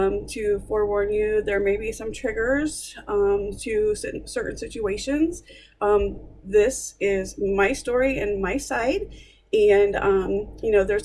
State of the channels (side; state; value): both; identical; correlation 1.00